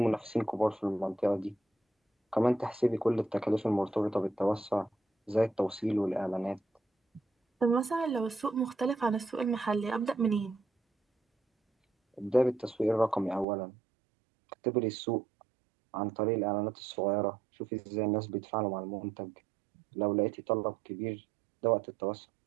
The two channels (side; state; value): left; drops out; at 13.5 s